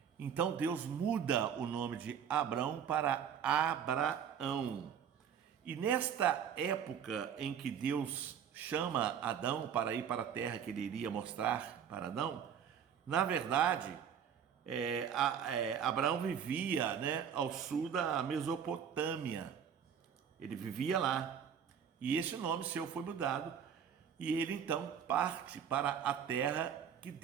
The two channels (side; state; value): left; quieter; 8.1 dB